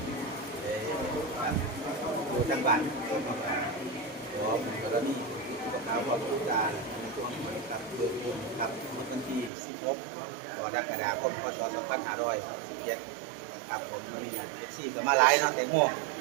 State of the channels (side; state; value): left; drops out; at 9.5 s